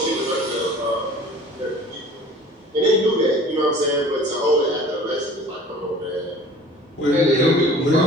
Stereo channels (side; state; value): both; normal; correlation 0.46